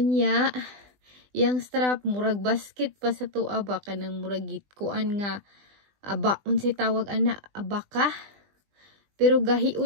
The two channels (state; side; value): late; left; 20 ms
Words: yang strap murag basket pa sa tuwa ba kanang murag kuan nga aba unsay tawag ana abaka. Pero